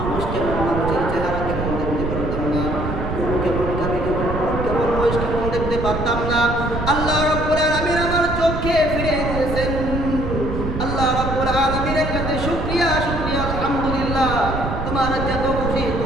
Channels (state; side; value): noise; right; rumble, 4 dB below the sound